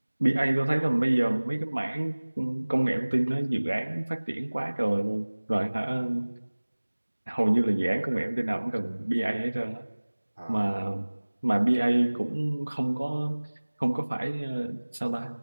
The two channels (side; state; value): both; inverted; correlation -1.00